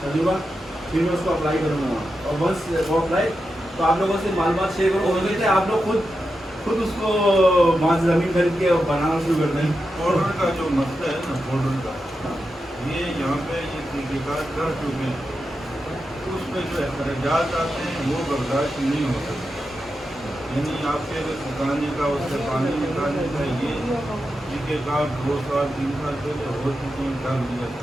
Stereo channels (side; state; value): both; normal; correlation 0.89